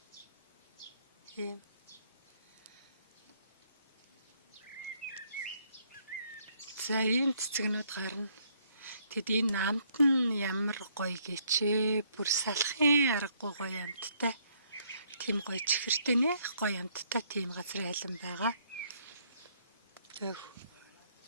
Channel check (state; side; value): inverted; both; correlation -0.68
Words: Ийм за ийм цэцэгнүүд гарна. Тэгэд энэ амт нь ямар гоё гэчээ. Бүр салахын аргагүй гоё амттай. Тийм гоё чихэртэй нэх гоё амттай тийм газрын айлм байгаа. Тэгээ